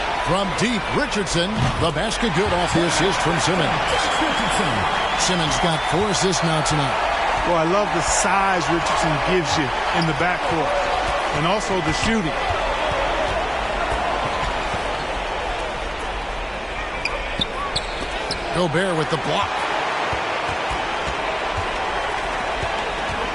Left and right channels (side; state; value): both; identical; correlation 1.00